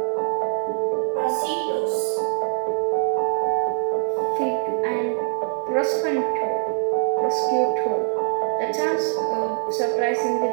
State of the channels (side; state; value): left; silent; digital silence